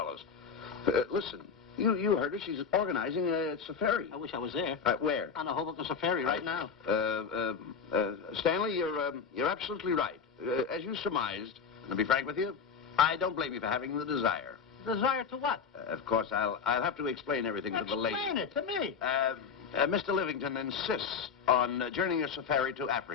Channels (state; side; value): quieter; right; 6.1 dB